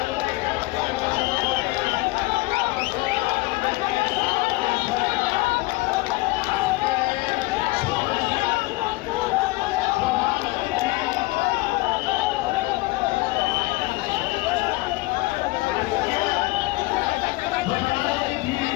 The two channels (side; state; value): right; quieter; 21.8 dB